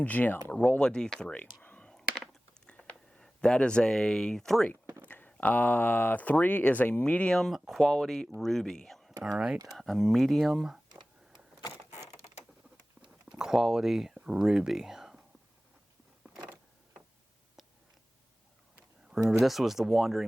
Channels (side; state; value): both; normal; correlation 0.97